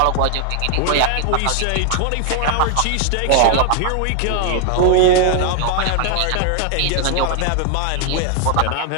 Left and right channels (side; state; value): both; different; correlation 0.00